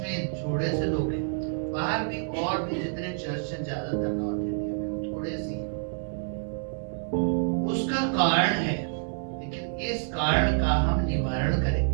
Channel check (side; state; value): left; silent; 59 dB below the other